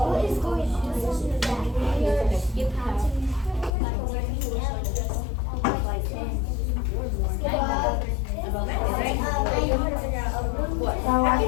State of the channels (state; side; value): drops out; right; at 3.7 s